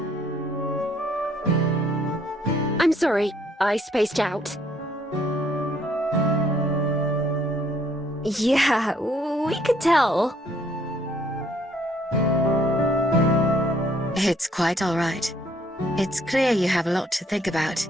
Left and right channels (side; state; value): both; normal; correlation 0.65